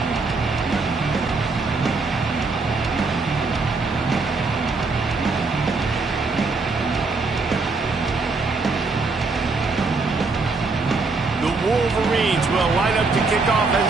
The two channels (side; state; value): left; quieter; 3.9 dB